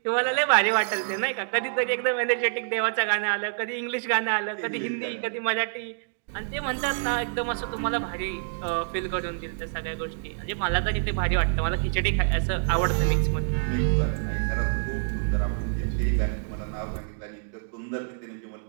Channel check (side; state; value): left; silent; digital silence